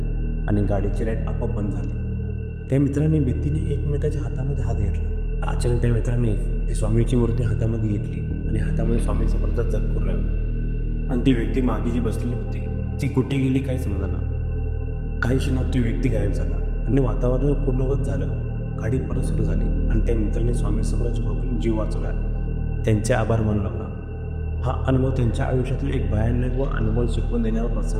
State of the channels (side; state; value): both; identical; correlation 1.00